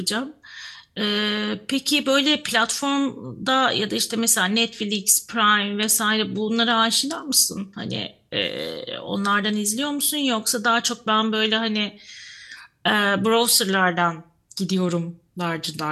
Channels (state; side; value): identical; both; correlation 1.00